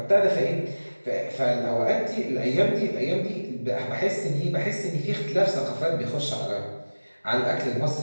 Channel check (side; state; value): both; inverted; correlation -1.00